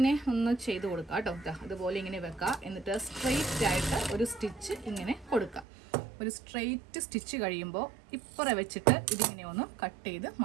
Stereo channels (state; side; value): drops out; left; at 5.7 s